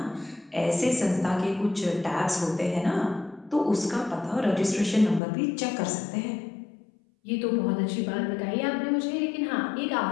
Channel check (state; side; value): drops out; right; at 5.2 s